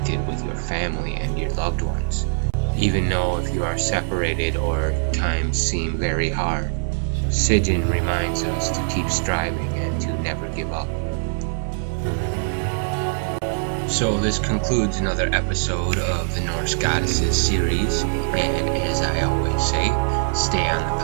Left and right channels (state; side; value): silent; left; 64 dB below the other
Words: with your family and your loved ones, even though if you are separated or times seem very hard. Sigyn reminds us to keep striving and to never give up. So this concludes another episode of the Norse Goddesses series, and as I always say, stay on the